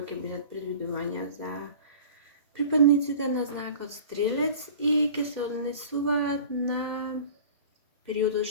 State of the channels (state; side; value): inverted; both; correlation -0.42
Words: ќе бидат предвидувања за припадниците на знакот Стрелец и ќе се однесуваат на периодот